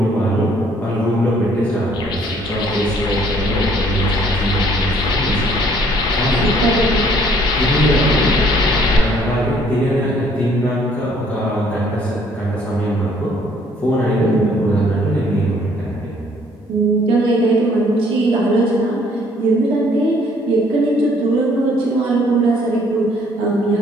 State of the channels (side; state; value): both; normal; correlation 0.62